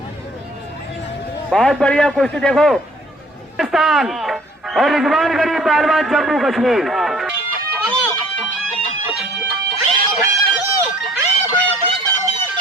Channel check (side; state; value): both; normal; correlation 0.54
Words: बहुत बढ़िया कुश्ती देखो, पाकिस्तान और रिजवान गनी पहलवान, जम्मू कश्मीर।